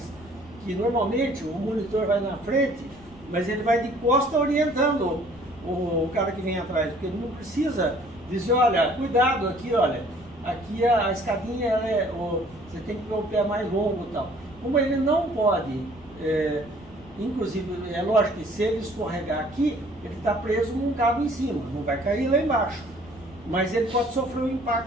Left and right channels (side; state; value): left; noise; rumble, 23 dB below the sound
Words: Que normalmente o monitor vai na frente, mas ele vai de costa orientando o cara que vem atrás, porque ele não precisa dizer, olha, cuidado aqui, olha, aqui a escadinha você tem que ter o pé mais longo e tal. Como ele não pode, inclusive, é lógico que se ele escorregar aqui, ele está preso num cabo em cima, não vai cair lá embaixo. Mas ele pode sofrer um